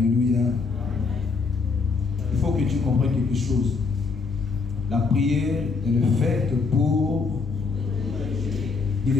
Il faut que tu comprennes quelque chose. La prière est faite pour. Il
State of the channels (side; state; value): right; quieter; 4.6 dB